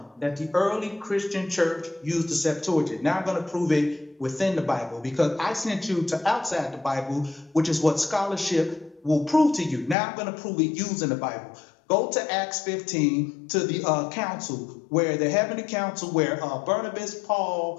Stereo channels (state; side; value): drops out; right; at 10.0 s